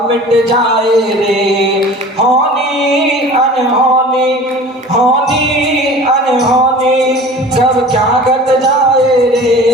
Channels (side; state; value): both; normal; correlation 0.42